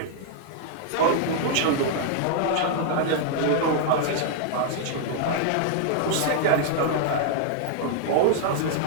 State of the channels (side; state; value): both; different; correlation -0.01